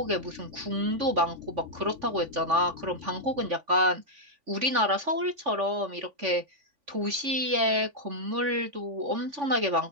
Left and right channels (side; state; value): left; late; 3.5 ms